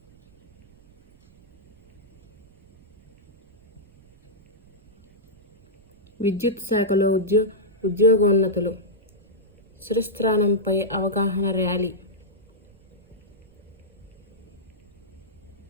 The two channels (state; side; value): noise; right; rumble, 29 dB below the sound